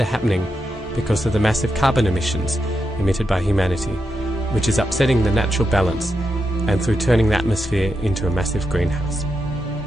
are happening because of the massive carbon emissions emitted by humanity, which is upsetting the natural balance and through turning the atmosphere into a massive greenhouse.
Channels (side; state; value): both; normal; correlation 0.86